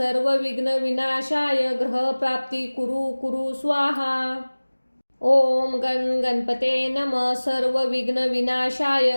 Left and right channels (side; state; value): both; inverted; correlation -1.00